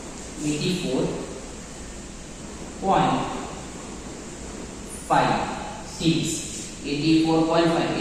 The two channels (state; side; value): identical; both; correlation 1.00